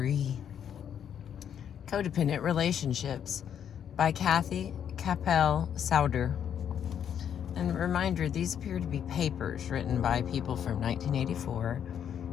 Codependent Relationships by Capell-Sowder. And a reminder, these appear to be papers written by people from 1984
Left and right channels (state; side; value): quieter; right; 8.8 dB